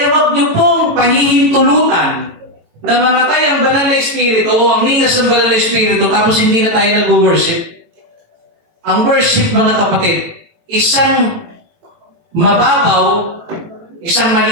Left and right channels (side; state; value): left; late; 18 ms